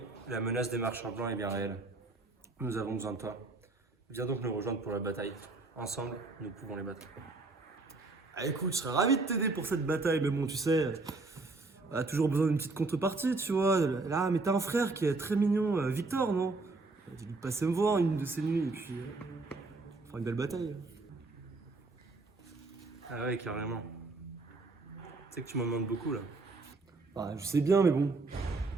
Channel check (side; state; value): left; quieter; 3.5 dB